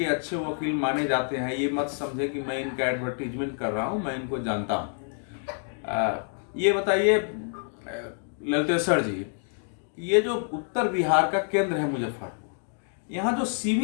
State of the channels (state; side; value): silent; right; 60 dB below the other